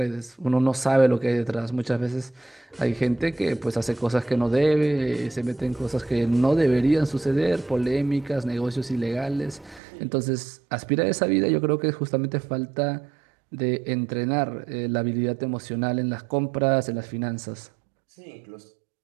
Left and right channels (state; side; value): drops out; left; at 9.8 s